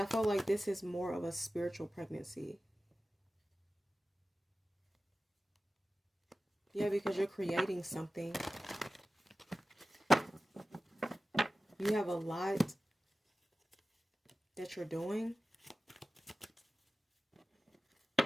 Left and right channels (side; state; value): both; normal; correlation 0.95